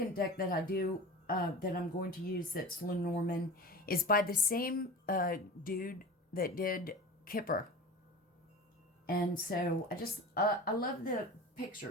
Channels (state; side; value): normal; both; correlation 0.33